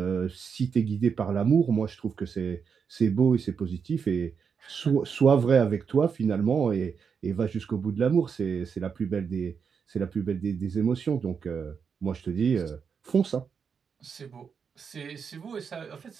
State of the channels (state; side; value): quieter; left; 6.3 dB